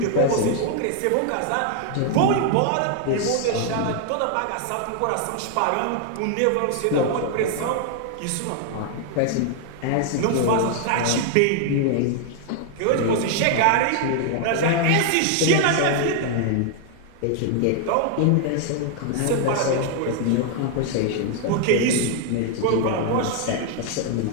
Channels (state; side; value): different; both; correlation 0.00